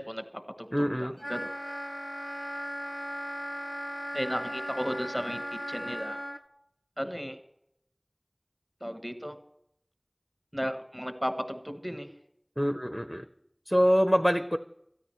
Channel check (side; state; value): both; identical; correlation 1.00